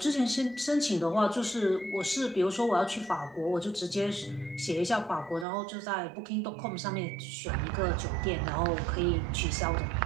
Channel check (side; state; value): left; drops out; at 5.5 s